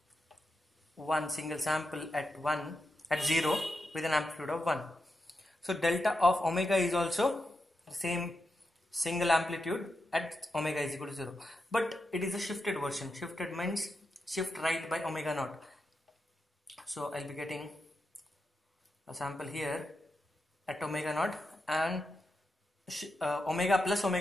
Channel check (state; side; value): normal; both; correlation 0.87